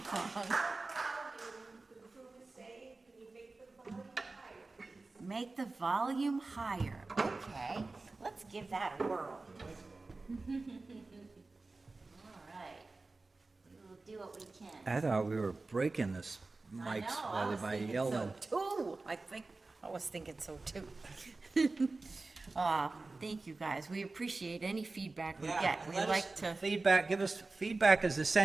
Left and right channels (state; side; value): quieter; left; 3.5 dB